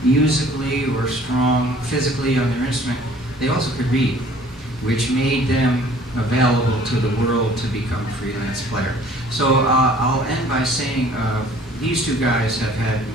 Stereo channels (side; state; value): both; normal; correlation 0.53